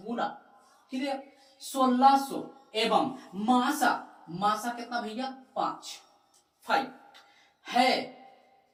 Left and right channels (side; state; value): both; identical; correlation 1.00